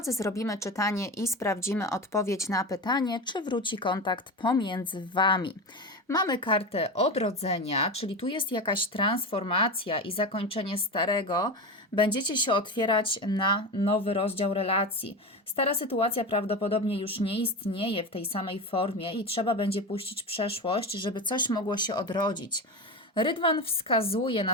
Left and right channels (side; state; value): both; normal; correlation 0.23